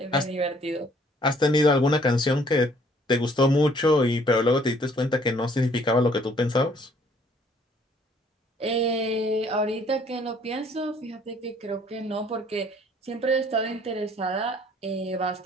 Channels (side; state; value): both; normal; correlation 0.60